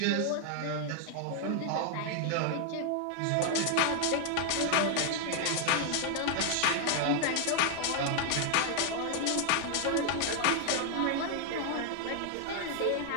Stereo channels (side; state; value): both; different; correlation 0.00